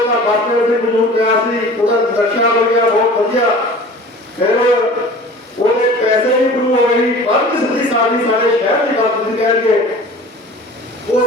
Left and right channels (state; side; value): normal; both; correlation 0.42